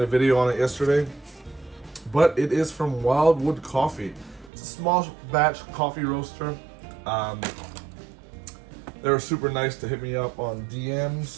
a video on it yesterday, but it is from Wildwood Coffee. It's a small batch coffee roaster. They were super nice to hit me up on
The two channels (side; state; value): left; drops out; at 4.5 s